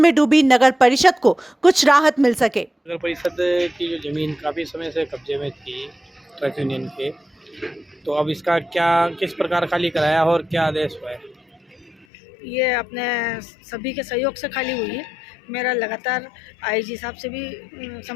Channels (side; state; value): right; drops out; at 12.1 s